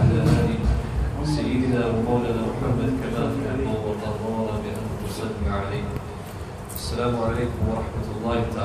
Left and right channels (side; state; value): both; identical; correlation 1.00